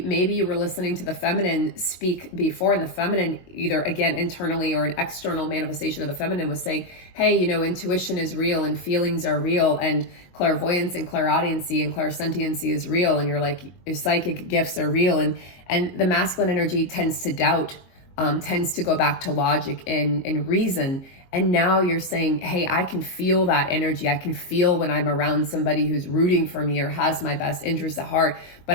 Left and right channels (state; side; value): late; right; 22 ms